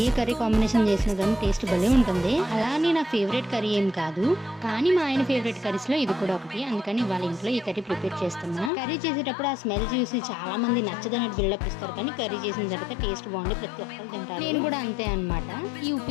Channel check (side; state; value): right; drops out; at 8.7 s